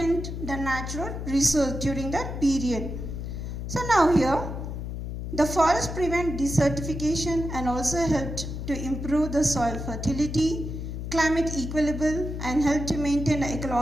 the natural resource during that period. So now here the forest prevent desertification and also helped to improve the soil fertility, climate equilibrium, and help to maintain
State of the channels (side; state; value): left; noise; hum, 6 dB below the sound